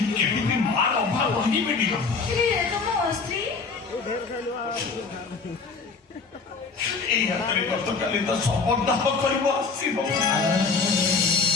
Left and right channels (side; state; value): right; quieter; 4.6 dB